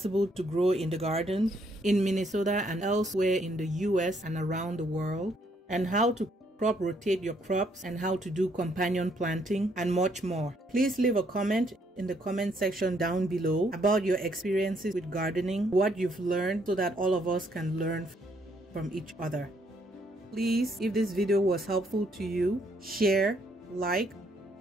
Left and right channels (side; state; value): both; normal; correlation 0.70